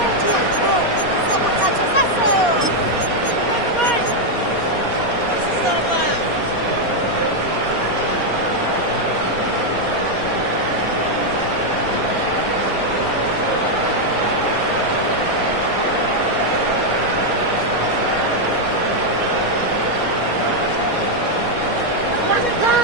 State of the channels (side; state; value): right; late; 4.2 ms